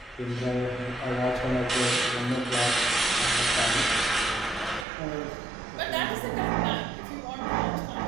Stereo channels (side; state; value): left; drops out; at 4.9 s